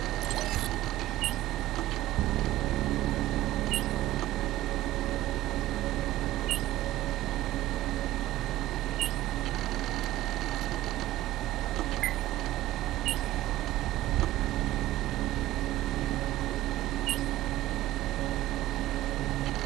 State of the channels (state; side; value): quieter; left; 15.5 dB